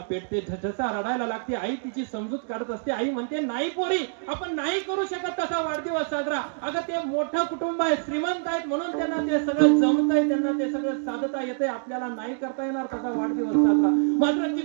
पेटते, झसा रडायला लागते. आई तिची समजूत काढत असते. आई म्हणते, नाही पोरी, आपण नाही करू शकत तसा वाढदिवस साजरा. अगं ते मोठं कुटुंब आहे, श्रीमंत आहेत म्हणून त्यांना ते सगळं जमतंय, त्यांना ते सगळं साधता येते, आपल्याला नाही करता येणार तसा वाढदिवस साजरा. मात्र ती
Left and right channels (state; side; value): silent; left; digital silence